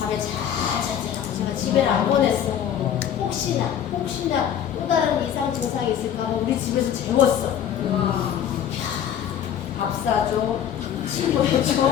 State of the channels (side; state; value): right; quieter; 9.6 dB